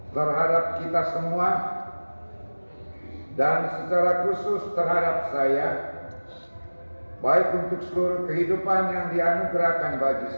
terhadap kita semua, dan secara khusus terhadap saya, baik untuk seluruh kehidupan yang dianugerahkan bagi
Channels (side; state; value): both; inverted; correlation -1.00